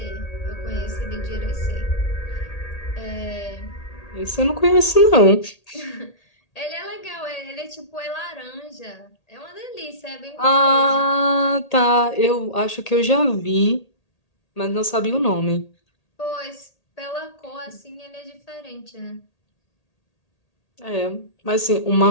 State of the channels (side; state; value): right; late; 1.8 ms